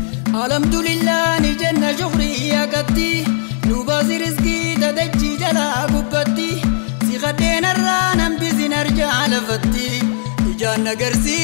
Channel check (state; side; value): silent; right; digital silence